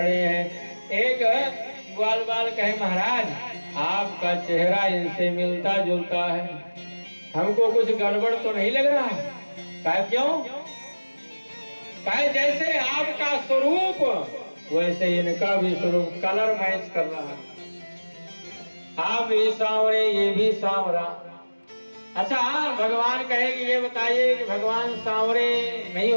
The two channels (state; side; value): inverted; both; correlation -1.00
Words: हैं। एक ग्वाल बाल कहे महाराज आपका चेहरा इनसे मिलता जुलता है, हमको कुछ गड़बड़ तो नहीं लग रहा? कहे क्यों? कहे जैसे आपका स्वरूप वैसे इनका भी स्वरूप कलर मैच कर रहा है, आप भी सांवरे ये भी सांवरा। अच्छा भगवान कहे कि ये बताइए कि भगवान सांवरे नहीं